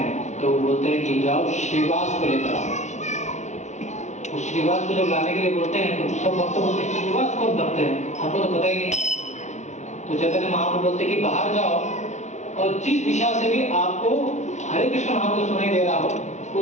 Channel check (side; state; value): right; late; 0.33 ms